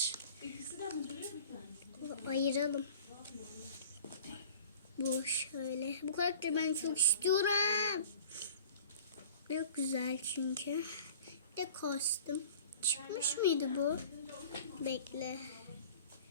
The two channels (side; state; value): both; inverted; correlation -0.45